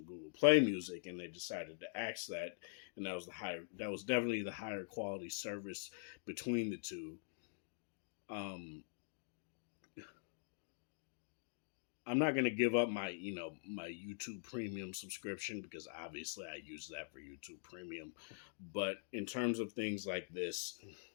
Google Play Music, and they decided to axe that, and that was definitely the higher quality service between the two. I'm not going to give up my YouTube Premium subscription, because obviously I use that for YouTube Premium. But in terms of things like this,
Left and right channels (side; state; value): right; silent; digital silence